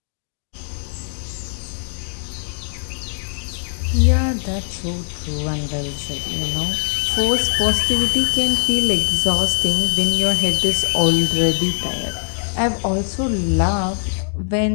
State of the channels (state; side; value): silent; right; digital silence